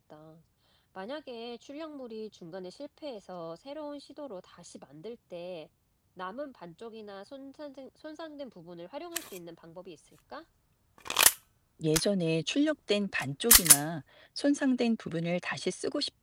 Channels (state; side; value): identical; both; correlation 1.00